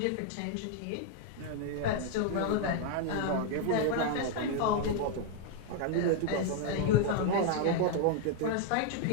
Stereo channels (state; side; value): different; both; correlation 0.00